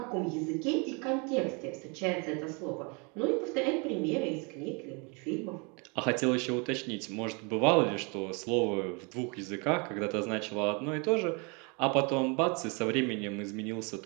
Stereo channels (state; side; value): quieter; left; 32.2 dB